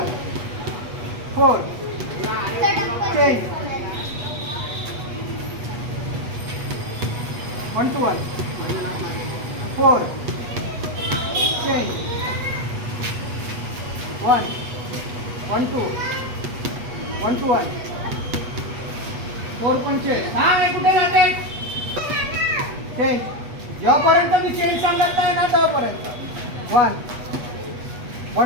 4 चेंज. 1 2 1 4 चेंज. 1 1 2 1 2 1 4 पंचेस. हा मी कुठे जाते. चेंज. जेव्हापर्यंत मी चेंज सांगत नाही ना तेव्हापर्यंत. 1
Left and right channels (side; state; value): left; late; 8.2 ms